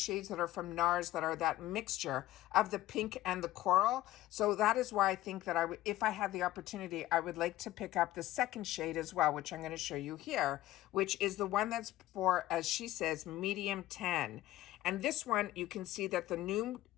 that are from NARS that are that mixture of the pink and the coral. So that is why I think that if I had the opportunity, I would like to pick up the second shade as well, which I'm going to show you here, which is the one that's for, as she says, medium tan. And this one, you can see that the new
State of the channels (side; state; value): right; quieter; 15.6 dB